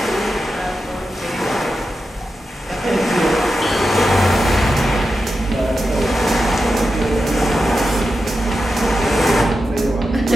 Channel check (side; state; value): both; normal; correlation 0.90